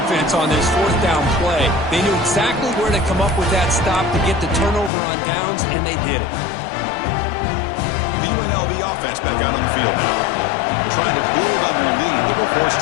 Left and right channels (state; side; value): drops out; right; at 4.9 s